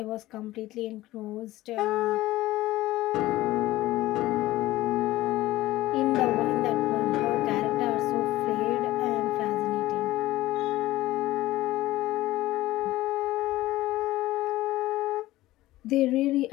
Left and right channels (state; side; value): quieter; right; 16.9 dB